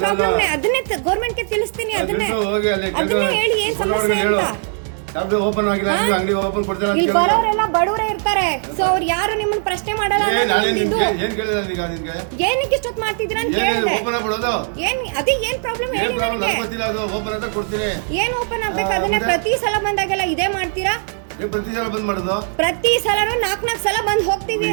ಪ್ರಾಬ್ಲಮ್ ಅದನ್ನೇ ಗೌರ್ಮೆಂಟ್ ಗೆ ತಿಳಿಸ್ತೀನಿ. ಅದನ್ನೇ ಹೇಳಿ ಏನ್ ಸಮಸ್ಯೆ ಅಂತ. ಇಲ್ಲಿ ಬರೋರೆಲ್ಲ ಬಡವರೇ ಇರ್ತಾರೆ. ಸೊ ಅವ್ರು ಯಾರು ನಿಮ್ಮನ್ನ ಪ್ರಶ್ನೆ ಮಾಡಲ್ಲ. ಏನಕ್ಕೆ ಇಷ್ಟೊತ್ತು ಮಾಡ್ತಿದ್ದೀರಾ ಅಂತ ಕೇಳಿದೆ. ಅದೇ ಏನ್ ಪ್ರಾಬ್ಲಮ್ ಹೇಳಿ ನನಗೆ. ಏನ್ ಓಪನ್ ಆಗ್ಬೇಕು? ಅದನ್ನೇ ಪ್ರತಿ ಸಲ ಬಂದಾಗೆಲ್ಲ ಇದೇ ಮಾಡ್ತೀರಾ? ಪ್ರತಿ ಸಲನು 4 ಸಲ ಬಂದ್ ಹೋಗ್ತೀವಿ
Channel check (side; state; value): left; silent; 56 dB below the other